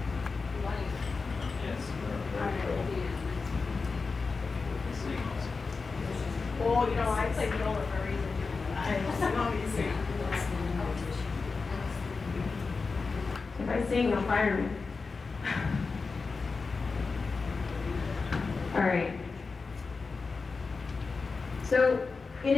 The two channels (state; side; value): quieter; right; 4.4 dB